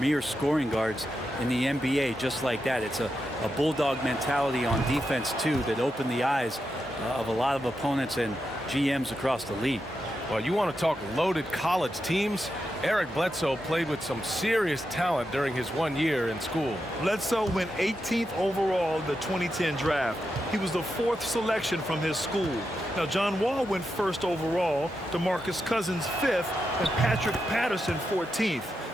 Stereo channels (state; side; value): normal; both; correlation 0.87